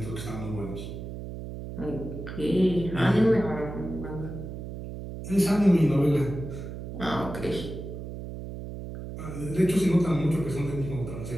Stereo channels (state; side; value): noise; right; hum, 8 dB below the sound